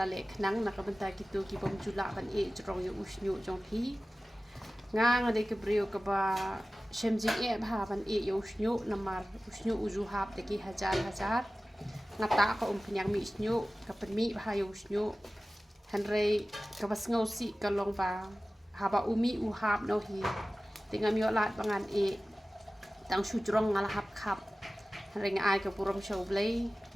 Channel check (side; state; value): both; normal; correlation 0.96